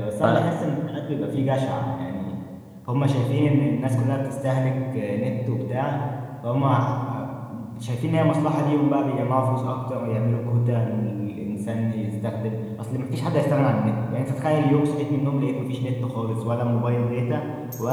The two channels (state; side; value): identical; both; correlation 1.00